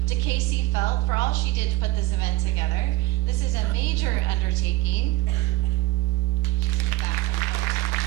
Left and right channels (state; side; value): quieter; left; 18.6 dB